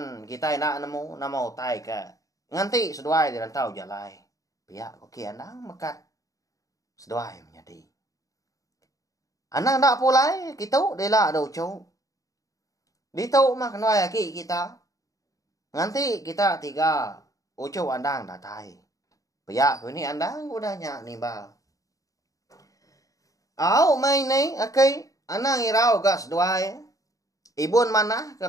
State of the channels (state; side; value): late; right; 0.16 ms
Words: kita nak nemu nama utai ke. Nganti seduai di rantau jalai. Pihak koki andang mekat. Seduai menjadi. Andang tak pulai. Kita dela do ucu. Ditau mah kenai aki kita. Nganti kita tiga. Ucu andang datai. Pihak ini andang udahnya nimbal. Main ni aki. Anang irau gas doai. Ibun mana